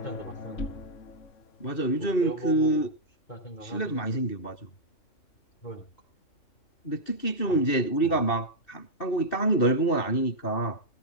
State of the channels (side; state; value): right; late; 2.7 ms